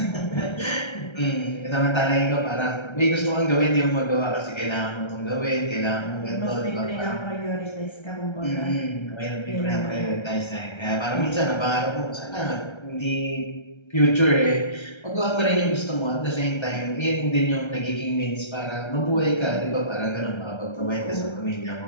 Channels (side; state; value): right; late; 1.3 ms